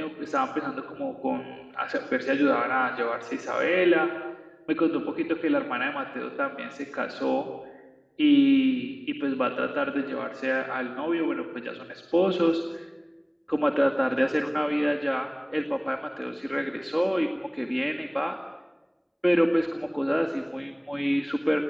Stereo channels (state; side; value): identical; both; correlation 1.00